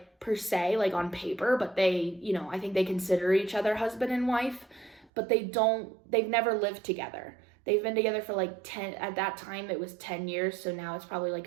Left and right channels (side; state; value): left; drops out; at 5.1 s